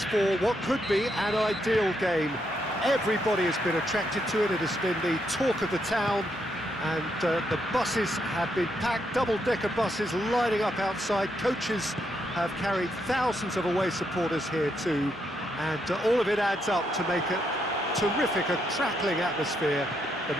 for what could be an ideal game. Everybody has been attracted to it. It has been the talk of the town, and the buses have been packed, double-decker buses lining up outside. Coaches have carried thousands of away supporters here to And all of it adds up to make a terrific, a crackling atmosphere. The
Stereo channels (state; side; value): normal; both; correlation 0.78